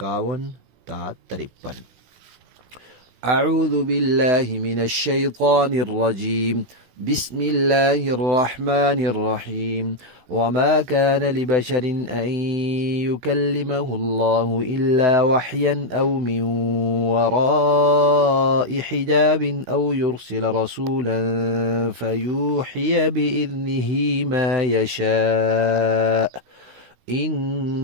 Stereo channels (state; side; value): late; left; 16 ms